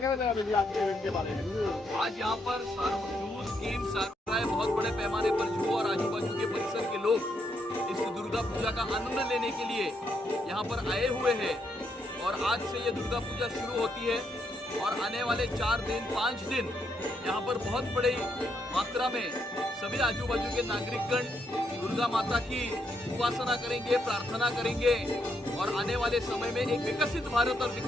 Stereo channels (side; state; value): both; normal; correlation 0.77